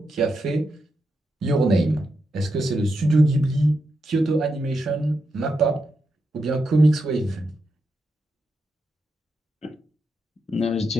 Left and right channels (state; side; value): normal; both; correlation 0.85